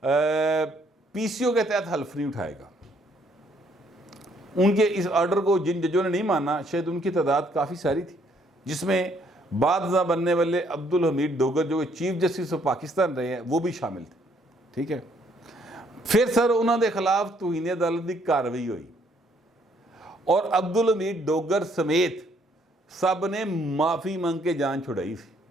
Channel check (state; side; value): normal; both; correlation 0.67